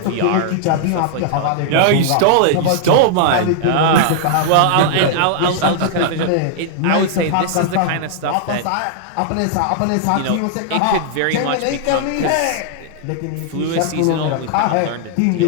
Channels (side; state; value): both; different; correlation -0.01